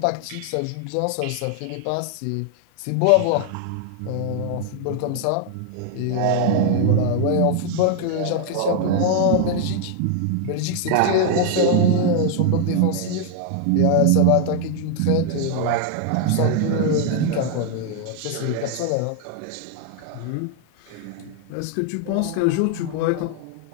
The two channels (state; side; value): different; both; correlation 0.00